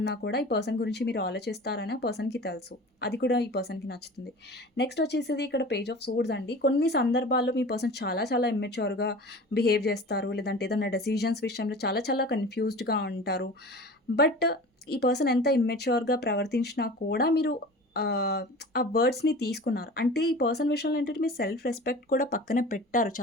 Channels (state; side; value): normal; both; correlation 0.38